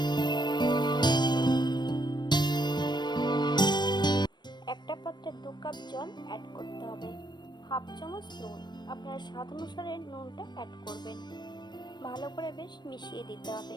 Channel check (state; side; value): late; right; 0.21 ms